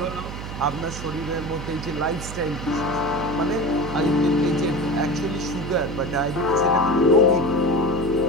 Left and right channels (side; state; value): right; noise; hum, 8 dB below the sound